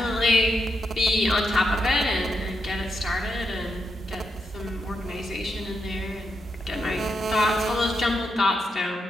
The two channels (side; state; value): both; normal; correlation 0.83